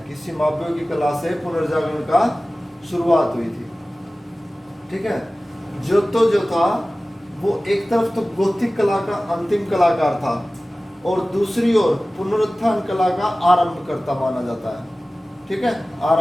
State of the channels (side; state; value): both; normal; correlation 0.97